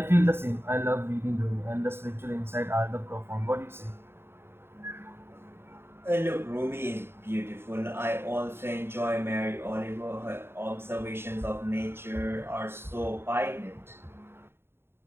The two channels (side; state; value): left; late; 0.11 ms